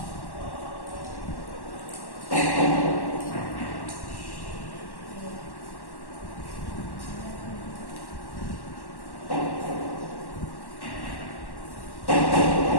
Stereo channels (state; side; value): late; right; 1.1 ms